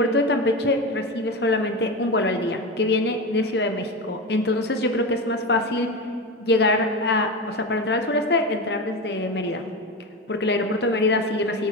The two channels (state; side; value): normal; both; correlation 0.21